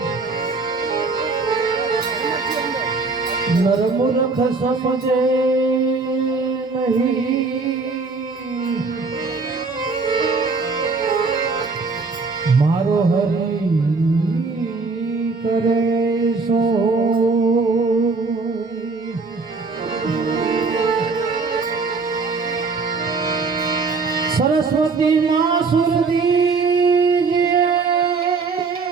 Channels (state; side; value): quieter; left; 4.2 dB